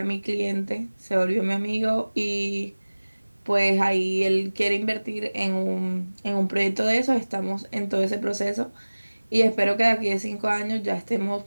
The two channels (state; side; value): inverted; both; correlation -1.00